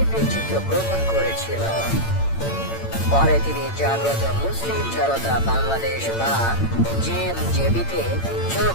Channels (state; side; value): late; right; 8.8 ms